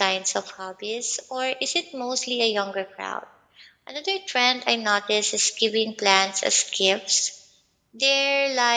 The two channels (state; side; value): identical; both; correlation 1.00